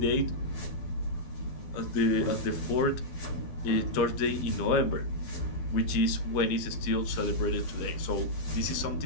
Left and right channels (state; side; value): late; right; 12 ms